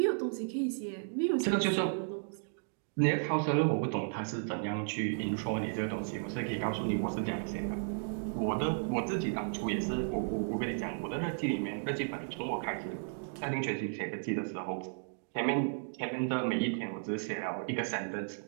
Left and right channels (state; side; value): silent; left; digital silence